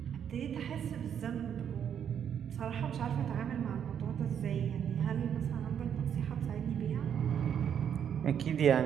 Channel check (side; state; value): left; quieter; 8.6 dB